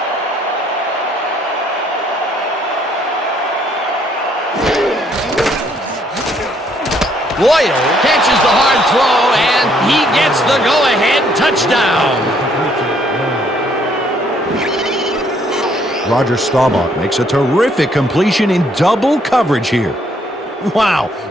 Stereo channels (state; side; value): normal; both; correlation 0.67